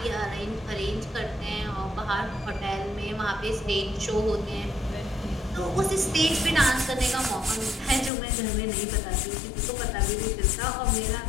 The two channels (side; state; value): right; drops out; at 8.1 s